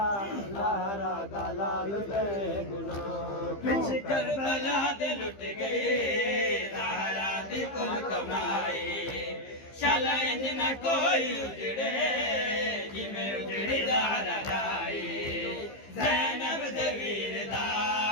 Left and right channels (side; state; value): right; late; 15 ms